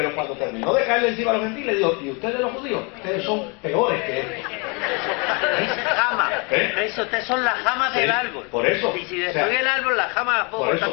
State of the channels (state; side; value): quieter; right; 32.1 dB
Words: cuando terminó de caerle encima a los gentiles, dijo, y ustedes los judíos, ustedes son peores que estos. Jama. ¿Eh? Eso, ustedes son las jamas del árbol. Por eso. Y si destruye el árbol, las jamas las puedo cortar